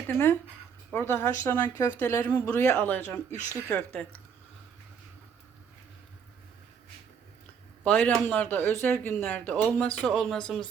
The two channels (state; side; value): quieter; left; 7.0 dB